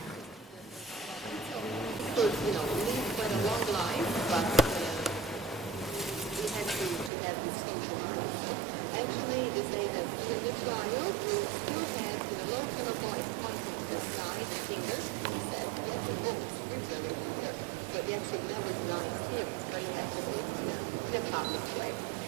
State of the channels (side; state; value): left; drops out; at 7.1 s